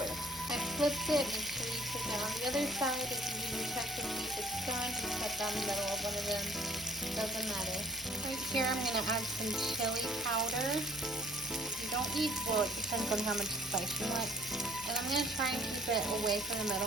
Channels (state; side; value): normal; both; correlation 0.55